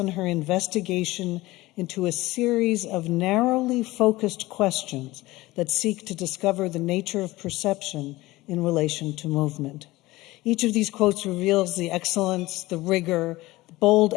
her investigation into a series of narrowly focused questions that seek to discover the nature of perception in relation to movement. Each of these quotes reveals the excellence, the rigor, bold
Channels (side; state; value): right; quieter; 19.1 dB